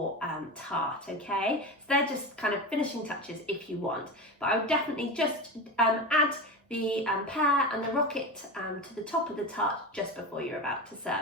tart, okay? So they're just kind of finishing touches if you want, but I would definitely just add the pear and the rocket to the top of the tart just before you're about to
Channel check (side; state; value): both; normal; correlation 0.24